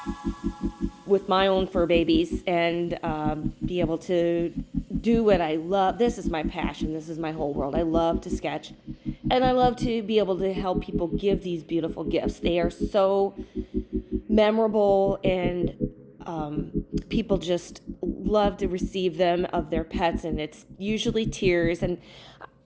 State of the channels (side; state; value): both; identical; correlation 1.00